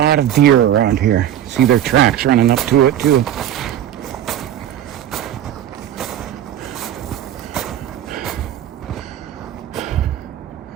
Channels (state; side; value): quieter; left; 11.1 dB